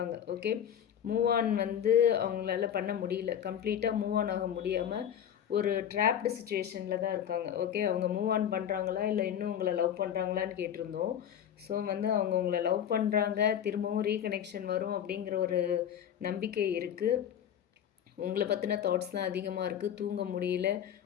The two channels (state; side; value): quieter; right; 9.5 dB